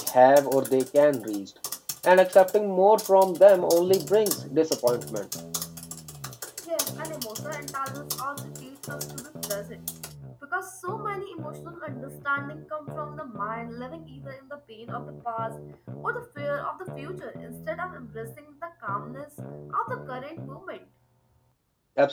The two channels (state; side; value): identical; both; correlation 1.00